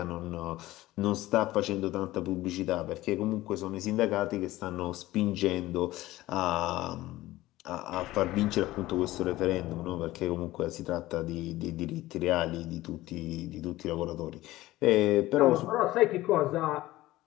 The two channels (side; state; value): right; quieter; 17.0 dB